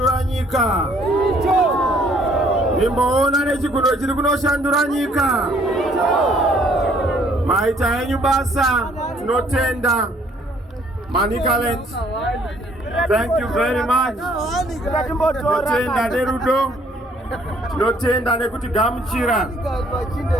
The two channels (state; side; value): normal; both; correlation 0.62